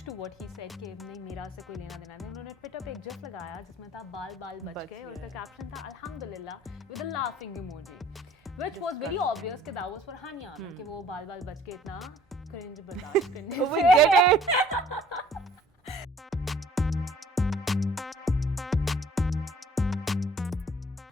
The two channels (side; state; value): both; normal; correlation 0.55